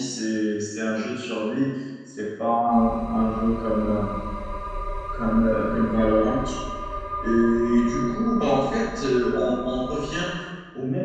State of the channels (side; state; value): both; identical; correlation 1.00